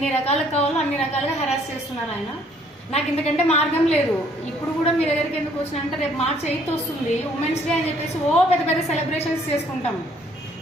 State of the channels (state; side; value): normal; both; correlation 0.63